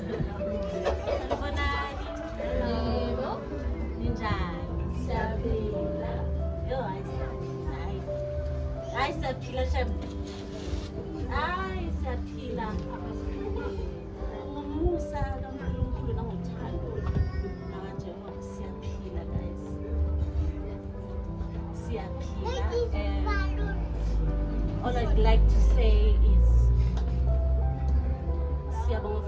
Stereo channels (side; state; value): both; identical; correlation 1.00